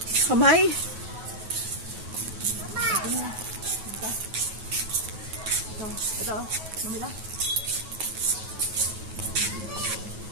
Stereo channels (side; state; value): left; late; 9.3 ms